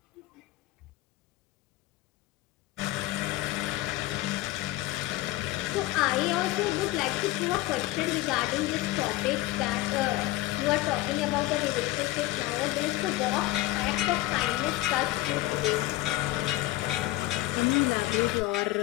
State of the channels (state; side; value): quieter; right; 17.2 dB